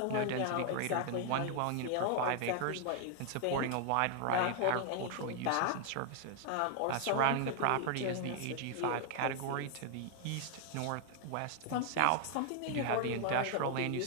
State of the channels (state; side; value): different; both; correlation 0.00